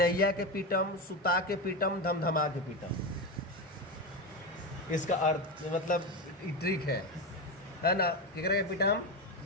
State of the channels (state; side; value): normal; both; correlation 0.16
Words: के पीठम, सुता के पीठम, धमधमा के पीठम, इसका अर्थ मतलब ट्रिक है ना। केकरा के पीठम?